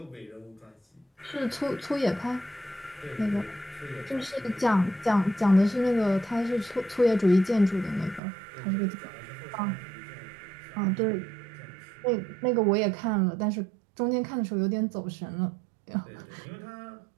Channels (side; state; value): left; drops out; at 8.2 s